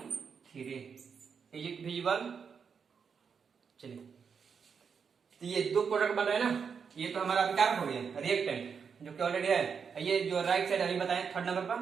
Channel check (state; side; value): quieter; left; 6.3 dB